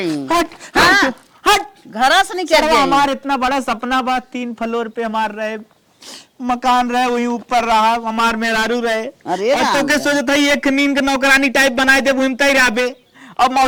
हट हट हट घरास नहीं कर चलो जाई। हमारे इतना बड़ा सपना बा, 3 फ्लोर पे हमार रहे मकान रहे, वही ऊपर रहा हमार मेहरारू रहे। अरे और तो के सोचत है एक नींद के नौकरानी टाइप बनाए दे घूमता ही रहबे, और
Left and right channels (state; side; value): identical; both; correlation 1.00